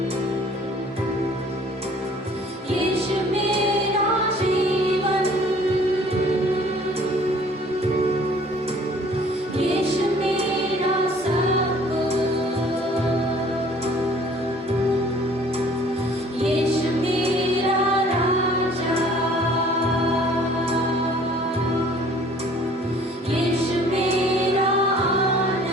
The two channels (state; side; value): normal; both; correlation 0.54